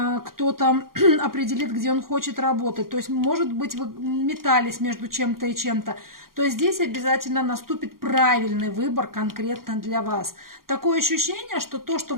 определит, где он хочет работать. То есть, может быть, вы метались между чем-то и чем-то. То есть, здесь обязательно наступит правильный выбор конкретно для вас. Такое ощущение, что то, что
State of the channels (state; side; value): late; left; 0.92 ms